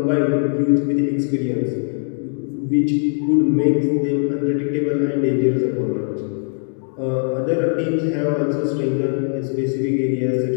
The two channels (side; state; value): right; silent; 57 dB below the other